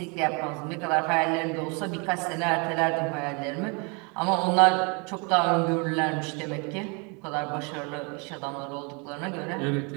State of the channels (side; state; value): left; quieter; 32.7 dB